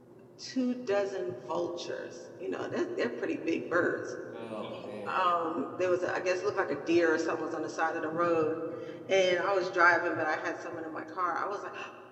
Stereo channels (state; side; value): identical; both; correlation 1.00